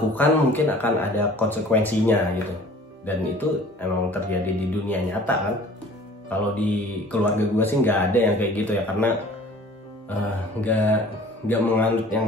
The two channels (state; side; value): normal; both; correlation 0.48